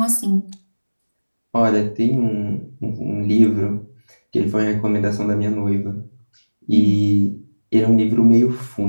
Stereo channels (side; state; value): both; inverted; correlation -1.00